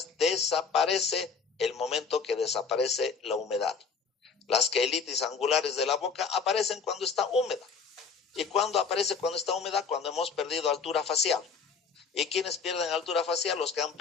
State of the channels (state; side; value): quieter; right; 5.5 dB